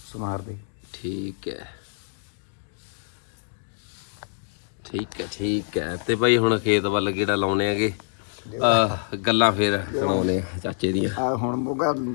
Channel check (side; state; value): right; silent; digital silence